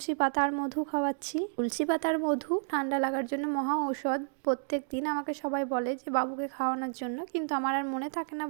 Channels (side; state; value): left; silent; digital silence